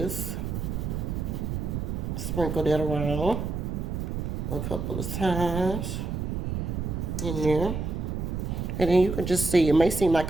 Sprinkle that around a couple of times in there, and then you can just see it may seem like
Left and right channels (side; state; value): right; noise; rumble, 3 dB below the sound